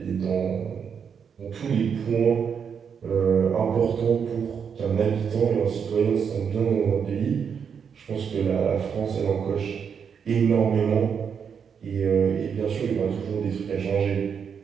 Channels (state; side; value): quieter; left; 7.0 dB